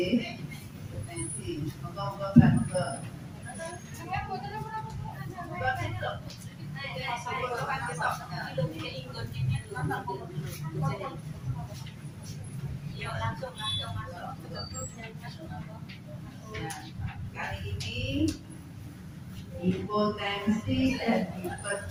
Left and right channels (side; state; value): both; identical; correlation 1.00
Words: hipertensi. Moga-moga kan moga. Yuk langsung masuk. Ya, kali ini hipotensi dan